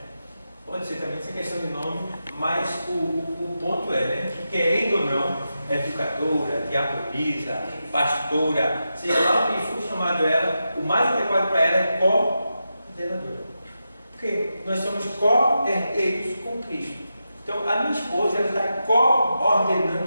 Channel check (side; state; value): both; inverted; correlation -0.89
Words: Pode ser também essa questão de nome, mas o ponto é, que querendo ou não, educadora, diaconisa, pastora, seja lá o que for chamado ela, o mais adequado para ela é coordenadora. Porque nós somos co-herdeiros com Cristo. Então, a minha esposa ela está